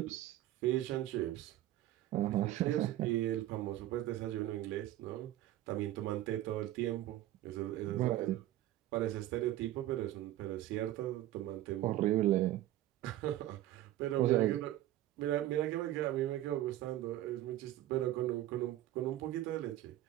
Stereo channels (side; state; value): left; quieter; 14.3 dB